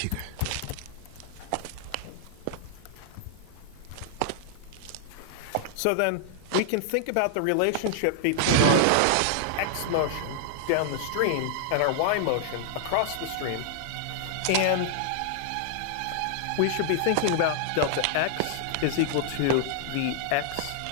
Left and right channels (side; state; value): both; different; correlation -0.01